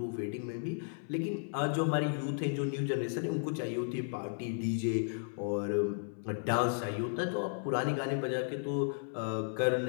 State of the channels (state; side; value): silent; right; 55 dB below the other